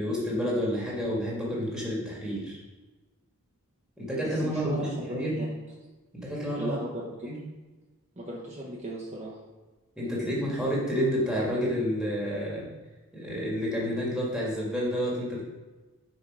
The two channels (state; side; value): normal; both; correlation 0.52